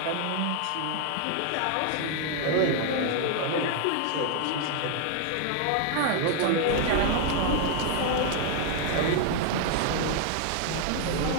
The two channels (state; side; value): different; both; correlation 0.00